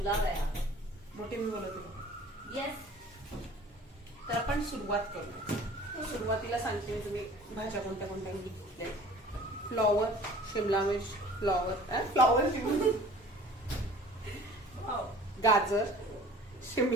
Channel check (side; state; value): both; normal; correlation 0.47